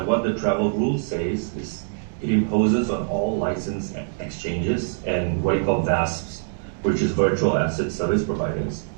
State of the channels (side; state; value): left; silent; digital silence